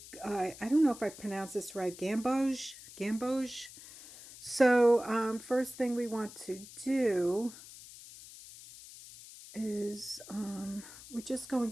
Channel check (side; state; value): left; noise; hiss, 17 dB below the sound